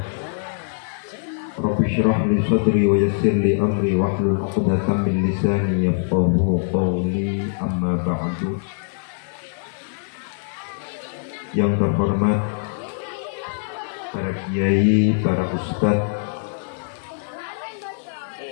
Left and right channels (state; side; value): silent; right; digital silence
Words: Rabbi syrah li sadri wa yassir li amri wahlul 'uqdatam min lisani yafqahu qawli, amma ba'du. Yang terhormat para kiai, para ustadz,